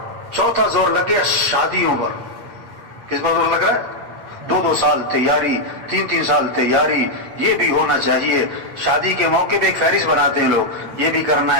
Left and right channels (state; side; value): late; left; 8.8 ms